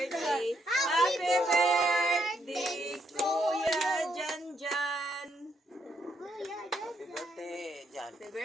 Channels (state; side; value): normal; both; correlation 0.75